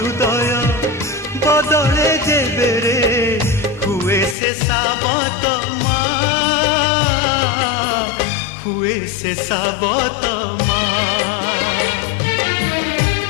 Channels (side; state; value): right; drops out; at 4.4 s